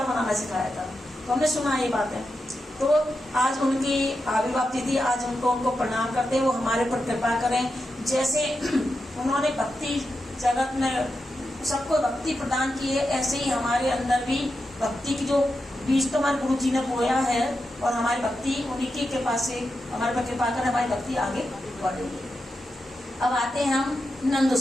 बनाना सिखाया था। तो हमने सुना ये बात है। तो आज उनकी आविर्भाव तिथि, आज उनको प्रणाम करते हैं, वो हमारे पर कृपा करें। जैसे उन्होंने भक्ति जगत में सबको भक्ति प्रदान की है, ऐसे ही हमारे अंदर भी भक्ति की जो बीज तो हमारे गुरु जी ने बोया है, और हमारी भक्ति उन्हीं की कृपा से हमारे पर कृपा कर हमारी भक्ति आगे बढ़ेगी। अब आते हैं हम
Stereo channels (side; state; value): both; normal; correlation 0.88